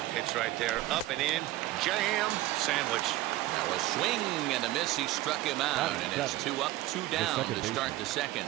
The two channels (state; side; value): quieter; left; 16.2 dB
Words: pitch right there. Up and in, jam, sandwich. Now a swing and a miss. He struck him out, and it's 2 up, 2 down to start the second.